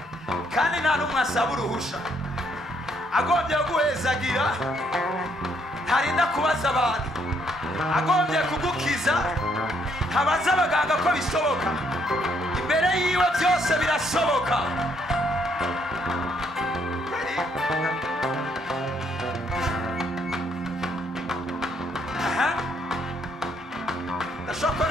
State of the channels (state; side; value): normal; both; correlation 0.70